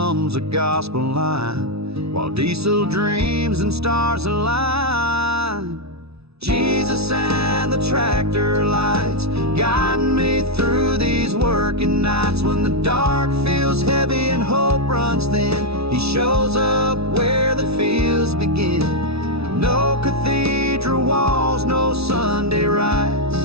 a gospel line, while diesel dreams and stars align. Jesus and the tractor lights guiding me through these working nights. When the dark feels heavy and hope runs thin, He shows up where the fields begin. No cathedral walls, no Sunday rites,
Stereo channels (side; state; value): left; late; 0.79 ms